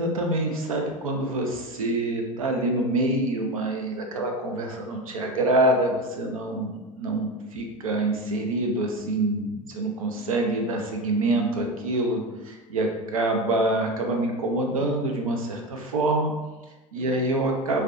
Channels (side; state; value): both; normal; correlation 0.21